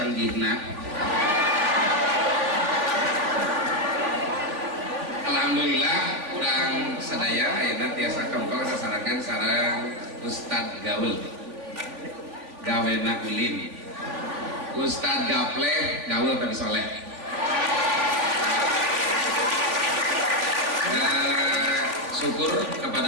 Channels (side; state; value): left; late; 3.4 ms